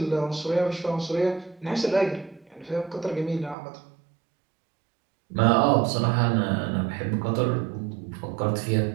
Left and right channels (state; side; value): drops out; left; at 3.6 s